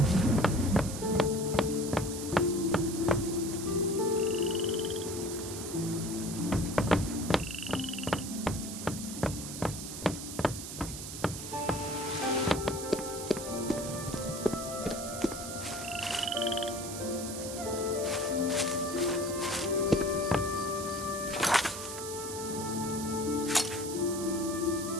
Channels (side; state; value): right; noise; hiss, 8 dB below the sound